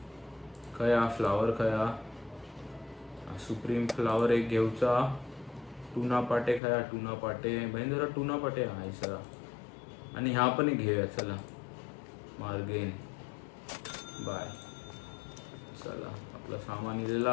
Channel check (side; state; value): right; drops out; at 6.6 s